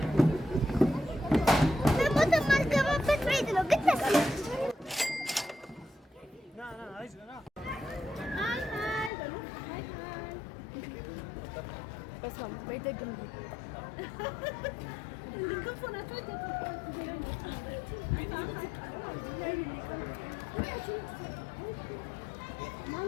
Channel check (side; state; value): right; drops out; at 9.1 s